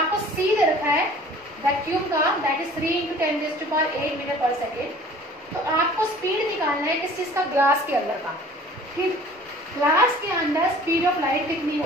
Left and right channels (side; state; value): both; normal; correlation 0.49